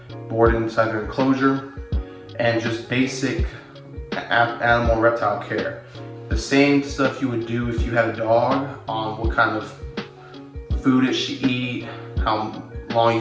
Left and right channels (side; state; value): both; identical; correlation 1.00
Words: inside their enclosure, and just basic animal and reptile care. The same stuff you would do if you had a dog on what kind of food it should eat, how long